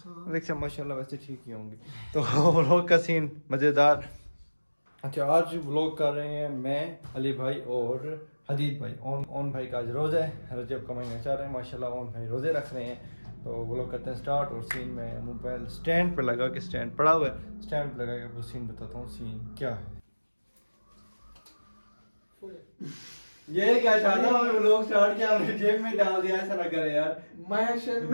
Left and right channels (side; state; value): both; inverted; correlation -1.00